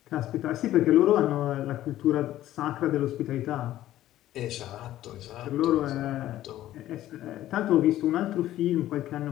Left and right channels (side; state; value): right; quieter; 13.8 dB